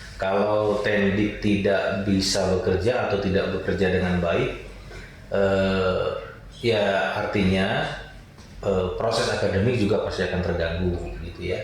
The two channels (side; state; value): both; identical; correlation 1.00